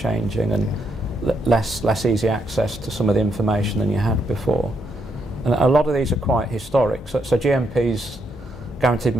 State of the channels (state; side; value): normal; both; correlation 0.78